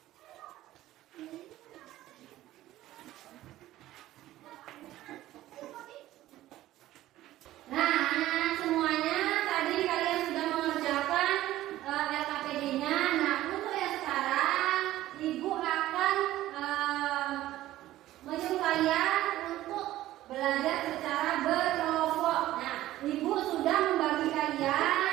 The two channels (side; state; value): left; quieter; 14.9 dB